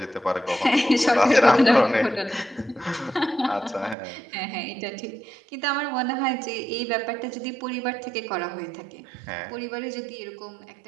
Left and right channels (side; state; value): left; drops out; at 4.0 s